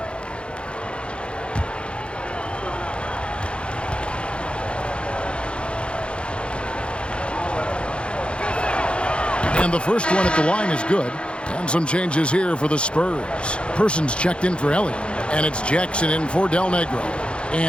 And the first one at the line is good. And some changes here for the Spurs. Persons checked in for Elliott. And it's Jackson in for Del Negro.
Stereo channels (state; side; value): late; right; 0.057 ms